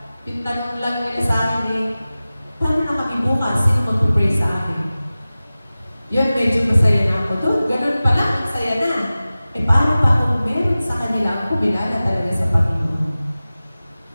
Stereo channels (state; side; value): inverted; both; correlation -0.97